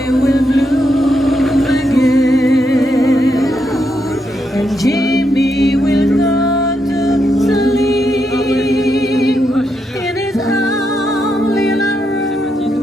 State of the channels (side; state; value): both; normal; correlation 0.81